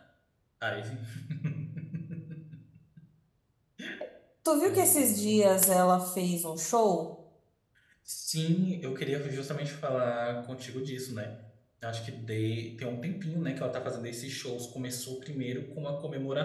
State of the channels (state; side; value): identical; both; correlation 1.00